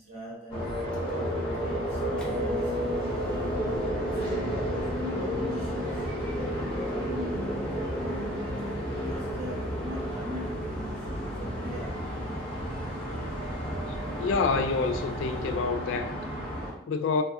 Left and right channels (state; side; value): normal; both; correlation 0.40